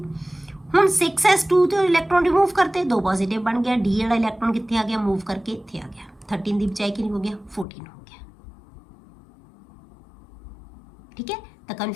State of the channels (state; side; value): drops out; right; at 7.7 s